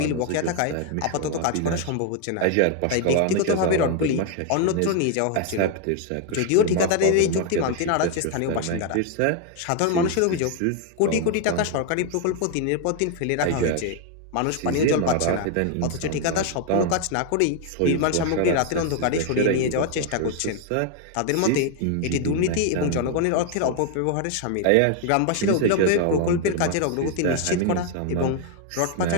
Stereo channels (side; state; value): both; different; correlation 0.01